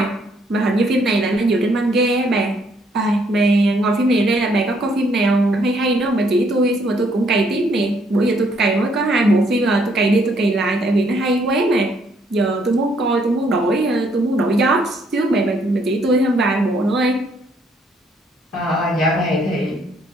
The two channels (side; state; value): both; normal; correlation 0.69